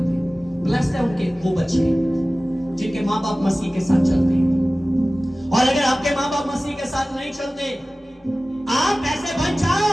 ब्लेस्ड है उनके वो बच्चे जिनके माँ बाप मसीह के साथ चलते हैं। और अगर आपके माँ बाप मसीह के साथ नहीं चलते, आप ऐसे बन जाओ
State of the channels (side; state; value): both; normal; correlation 0.97